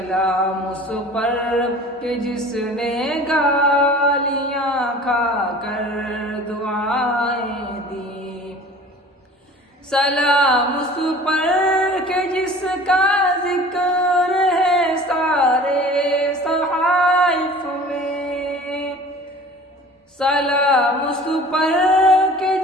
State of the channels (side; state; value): both; normal; correlation 0.44